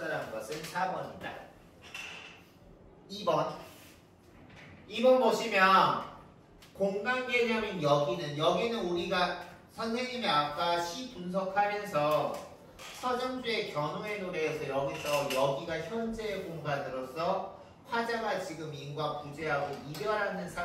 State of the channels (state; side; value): identical; both; correlation 1.00